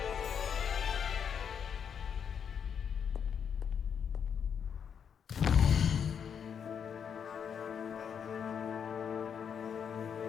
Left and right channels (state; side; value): quieter; right; 7.5 dB